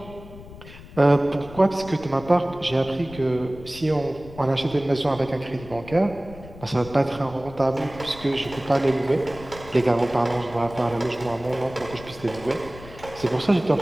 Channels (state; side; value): noise; left; rumble, 17 dB below the sound